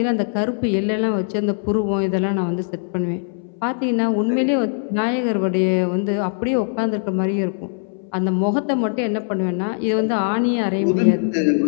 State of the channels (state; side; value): silent; right; 63 dB below the other